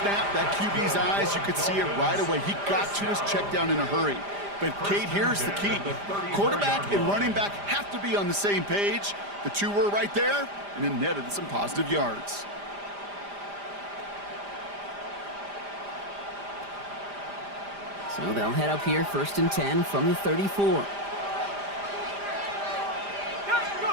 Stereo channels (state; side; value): late; left; 5.0 ms